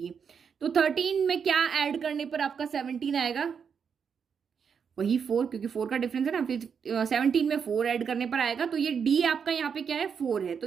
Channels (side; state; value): left; quieter; 6.7 dB